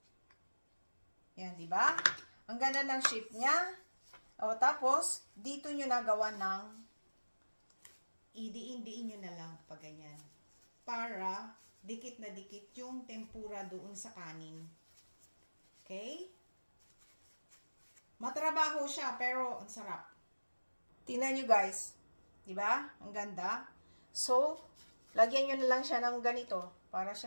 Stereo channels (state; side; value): inverted; both; correlation -1.00